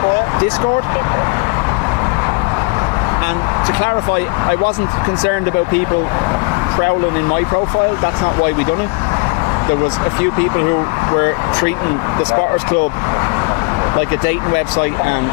Discord. And to clarify, I wasn't concerned about people prowling in my profile. That's not why we done it. There was a few people who were treating the Spotters Club like a dating website and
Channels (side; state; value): right; quieter; 31.6 dB